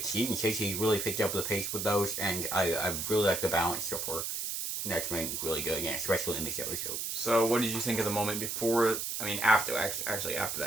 Season 6, he really picked up the pace with those, and I really like the balance so far. And that's been really good again, especially in this episode. So, what did you think of the moment before? After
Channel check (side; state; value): right; noise; hiss, 3 dB below the sound